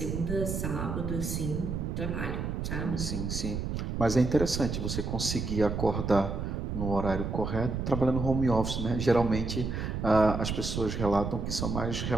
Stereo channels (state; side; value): noise; right; rumble, 3 dB below the sound